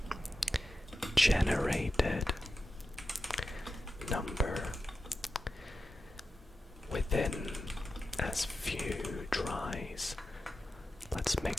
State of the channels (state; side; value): normal; both; correlation 0.91